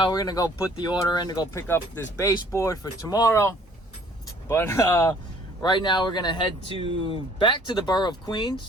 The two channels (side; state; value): both; normal; correlation 0.56